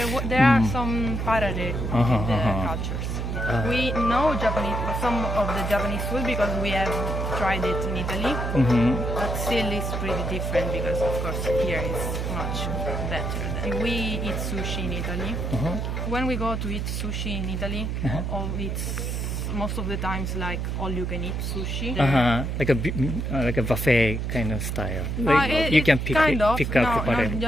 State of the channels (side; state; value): right; noise; hum, 2 dB below the sound